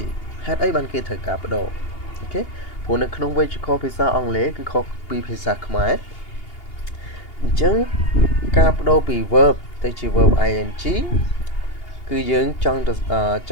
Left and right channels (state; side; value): late; right; 2.8 ms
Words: ហេតុអីបានគេត្រូវការបដូរអូខេព្រោះនៅក្នុងវេយ្យាករណ៍ភាសាអង់គ្លេសគឺខុសពីភាសាខ្មែរអញ្ចឹងការបដូរពី verb ទៅជា verb ing គឺយើងចង